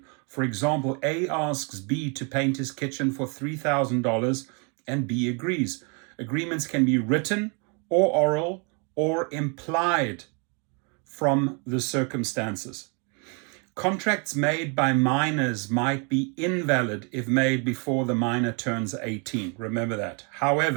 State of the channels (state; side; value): quieter; left; 35.4 dB